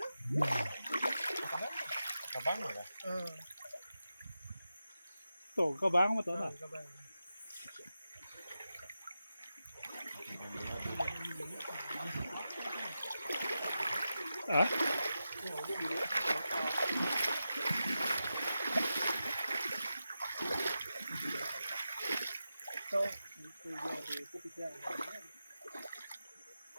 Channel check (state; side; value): inverted; both; correlation -0.91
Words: Kabang lah. Tu kau bang betul tak? Ah?